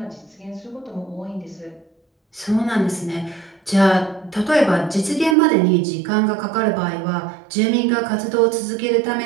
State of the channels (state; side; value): drops out; left; at 5.4 s